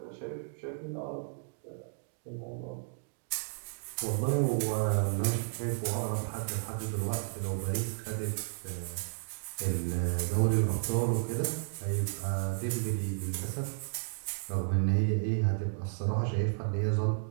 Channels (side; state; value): left; silent; digital silence